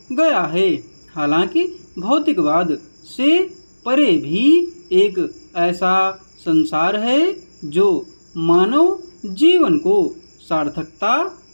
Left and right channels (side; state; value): both; inverted; correlation -1.00